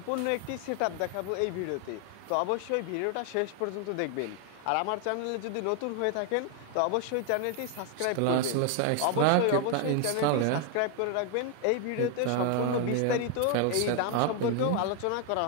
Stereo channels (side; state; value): both; different; correlation 0.00